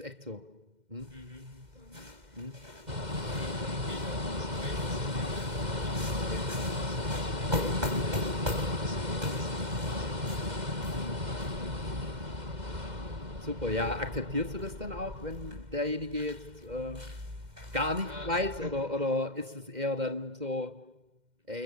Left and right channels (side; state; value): left; late; 2.1 ms